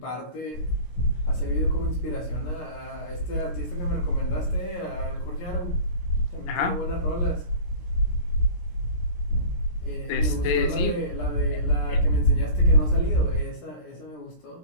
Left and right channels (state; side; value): late; right; 17 ms